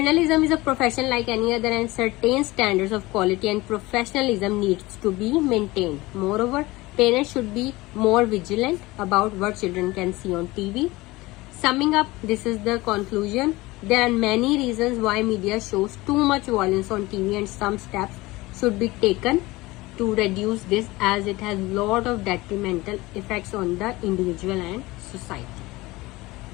is a profession like any other, and certain standards of quality and professionalism needs to be maintained. Moreover, parents should be more vigilant about what children can see on TV. Summing up, this is the conclusion. There are many reasons why media shows too much violence on TV, and some steps should be taken to reduce this, as it has lot of detrimental effects on the individual and society.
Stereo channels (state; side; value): quieter; right; 20.7 dB